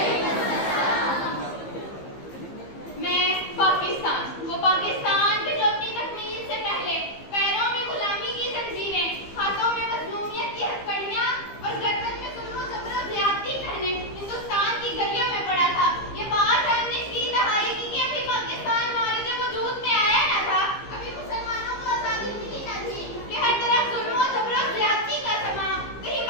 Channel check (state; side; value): late; right; 15 ms